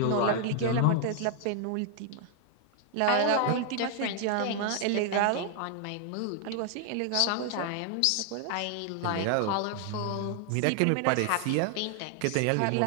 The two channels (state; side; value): different; both; correlation 0.00